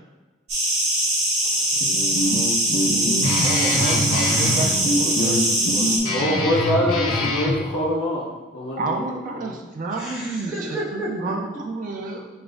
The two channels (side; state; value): both; normal; correlation 0.37